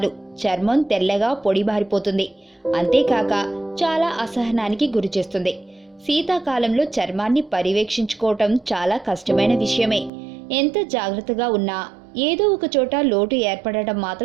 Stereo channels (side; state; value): left; drops out; at 10.1 s